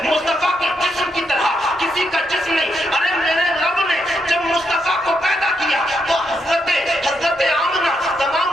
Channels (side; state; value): both; normal; correlation 0.80